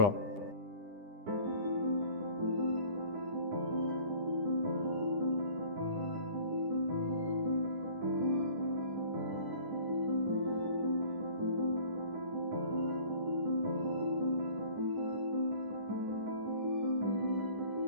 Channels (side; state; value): left; late; 10 ms